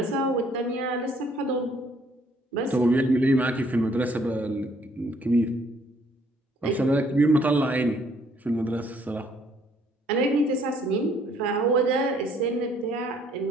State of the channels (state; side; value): normal; both; correlation 0.64